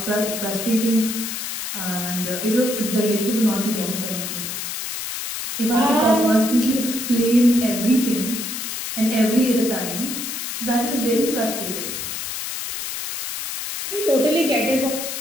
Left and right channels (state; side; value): noise; left; hiss, 5 dB below the sound